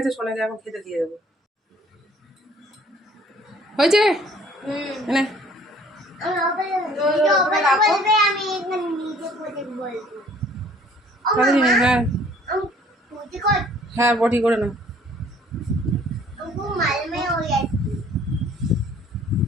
সোনাইকে এখন খেতে দিয়ে দেবো। হয়েছে এনে হ্যাঁ হ্যাঁ বটি করে না,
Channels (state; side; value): normal; both; correlation 0.57